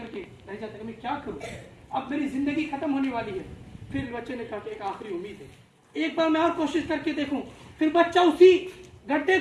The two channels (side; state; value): both; identical; correlation 1.00